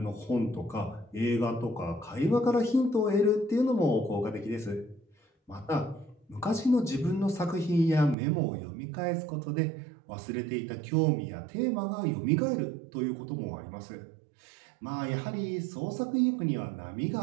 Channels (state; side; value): drops out; left; at 8.2 s